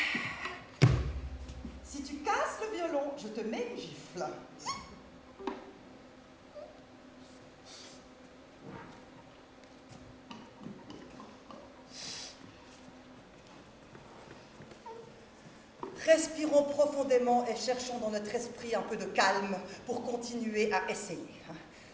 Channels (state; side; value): identical; both; correlation 1.00